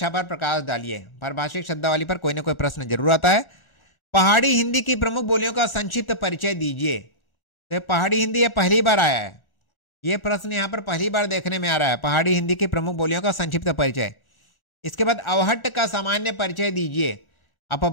पर प्रकाश डालिए, पारिभाषिक शब्दावली पर कोई ना कोई प्रश्न जरूर आता है। पहाड़ी हिंदी की प्रमुख बोलियों का संक्षिप्त परिचय दीजिए, तो पहाड़ी हिंदी यह पहली बार आया है, यह प्रश्न यहां पर पहली बार देखने में आ रहा है, पहाड़ी हिंदी की प्रमुख बोलियों का संक्षिप्त परिचय। इसके बाद अवहट्ट का सामान्य परिचय दीजिए।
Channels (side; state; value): right; late; 1.4 ms